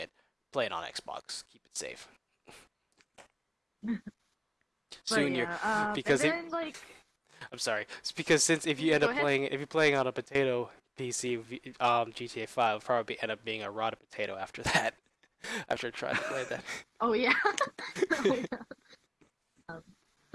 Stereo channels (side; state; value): both; identical; correlation 1.00